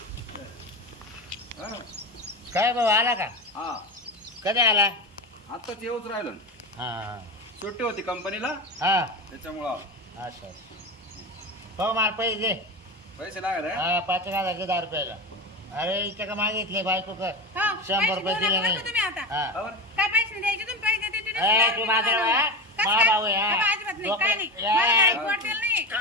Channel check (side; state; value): both; normal; correlation 0.22